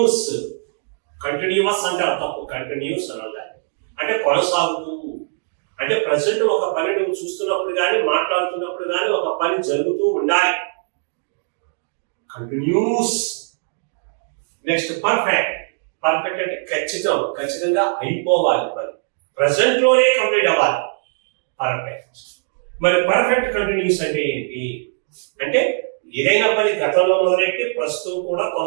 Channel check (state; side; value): silent; left; digital silence